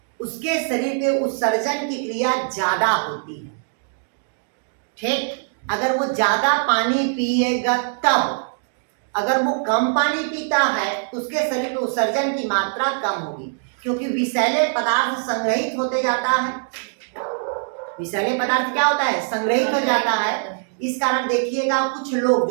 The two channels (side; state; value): left; silent; digital silence